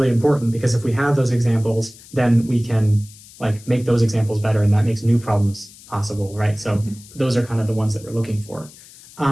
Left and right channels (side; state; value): left; noise; hiss, 21 dB below the sound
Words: important, because if we have those examples, then we can like make those examples better, and that makes new problems possible, right? So those are kind of the ones that we're looking for.